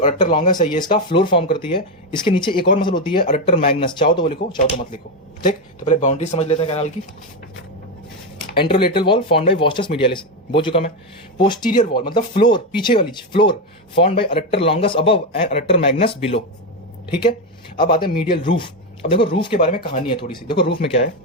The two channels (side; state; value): both; normal; correlation 0.10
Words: अडक्टर लॉन्गस है ये इसका फ्लोर फॉर्म करती है। इसके नीचे एक और मसल होती है अडक्टर मैग्नस, चाहो तो वो लिखो, चाहो तो मत लिखो, ठीक। तो पहले बाउंड्री समझ लेते हैं कैनाल की। Anterolateral wall formed by vastus medialis, बोल चुका मैं। पोस्टीरियर वॉल मतलब फ्लोर, पीछे वाली floor, formed by adductor longus above and adductor magnus below, ठीक है। अब आते हैं मीडियल रूफ। अब देखो रूफ के बारे में कहानी है थोड़ी सी। देखो रूफ में क्या है,